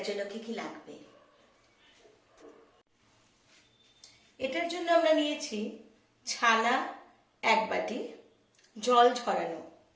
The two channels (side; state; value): both; identical; correlation 1.00